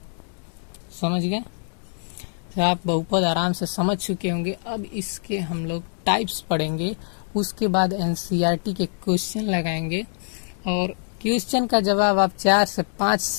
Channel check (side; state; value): right; silent; digital silence